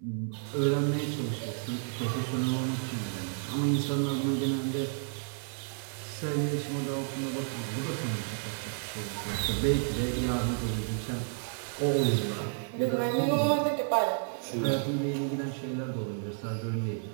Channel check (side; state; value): left; silent; digital silence